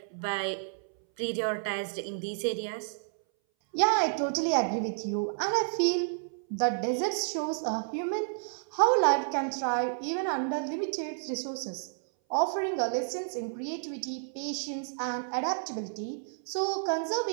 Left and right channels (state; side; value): silent; left; 57 dB below the other